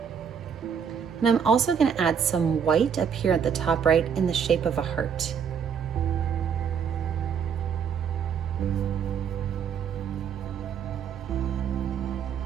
And I'm also going to add some white up here at the top right in the shape of a heart.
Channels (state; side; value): quieter; left; 7.4 dB